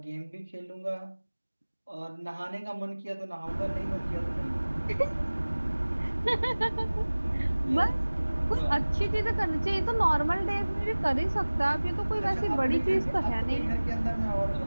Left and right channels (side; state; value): both; inverted; correlation -1.00